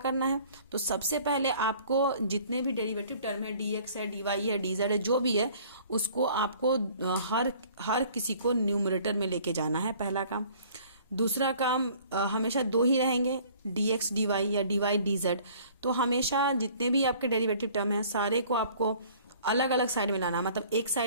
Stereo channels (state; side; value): inverted; both; correlation -0.53